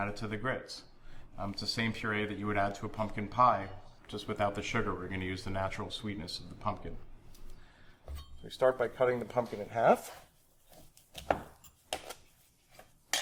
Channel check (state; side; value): identical; both; correlation 1.00